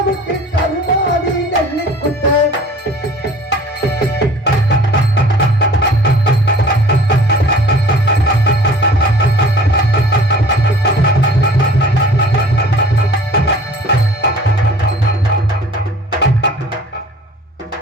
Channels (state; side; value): normal; both; correlation 0.48